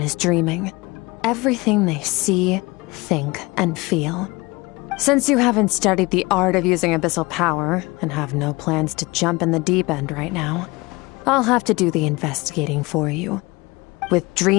dreaming. Everything they see, think, and feel. Since you haven't studied the art of using abyssal power, and have no plans to jump in the deep end right now, I'll have to do the investigating for you. With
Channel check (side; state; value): right; quieter; 23.7 dB